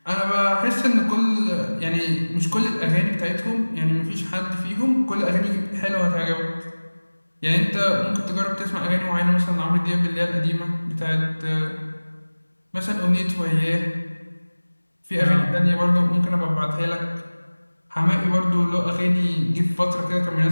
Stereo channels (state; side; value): inverted; both; correlation -1.00